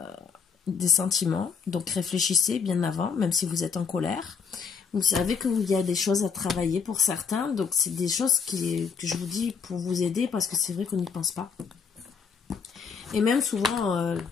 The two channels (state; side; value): quieter; right; 6.0 dB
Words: des sentiments, donc réfléchissez bien avant, même si vous êtes en colère. Vous savez qu'il y a des choses à travailler pour certains, donc c'est des choses que je vous dis pour vous aider, parce que c'est vrai qu'on n'y pense pas. Et même souvent,